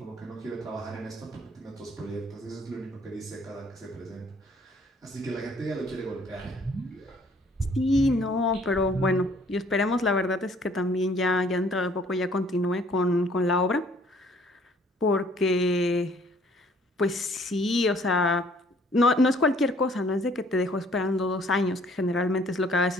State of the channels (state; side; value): normal; both; correlation 0.59